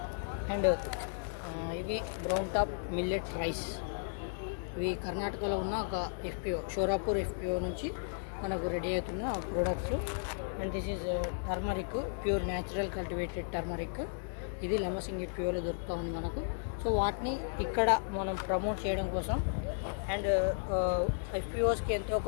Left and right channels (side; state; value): right; silent; digital silence